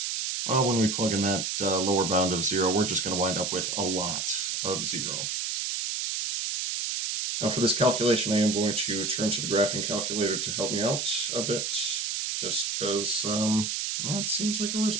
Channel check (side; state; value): right; noise; hiss, 1 dB below the sound